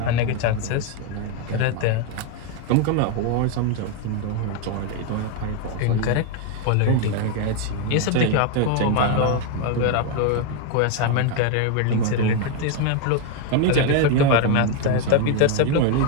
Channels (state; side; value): different; both; correlation 0.01